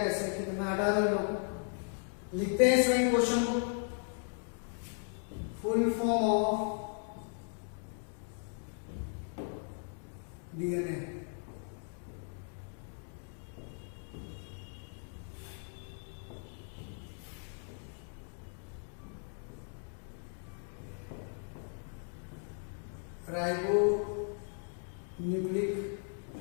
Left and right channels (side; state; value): right; silent; 53 dB below the other